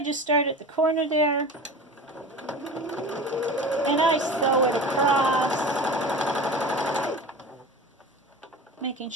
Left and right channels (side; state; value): both; normal; correlation 0.34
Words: just start at the corner there, and I sew it across, making